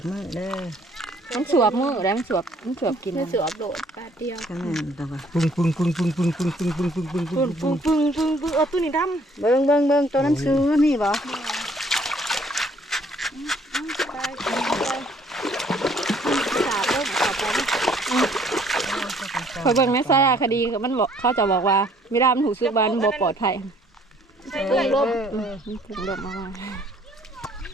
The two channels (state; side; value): normal; both; correlation 0.61